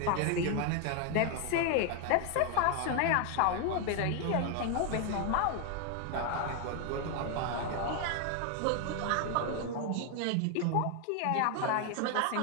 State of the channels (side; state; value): both; different; correlation 0.01